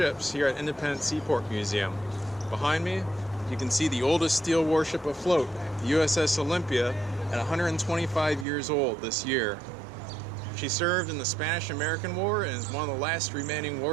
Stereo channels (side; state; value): left; drops out; at 8.5 s